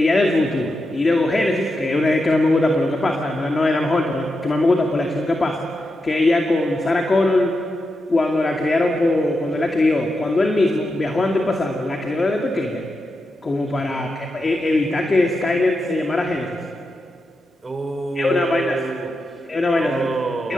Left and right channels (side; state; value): both; normal; correlation 0.87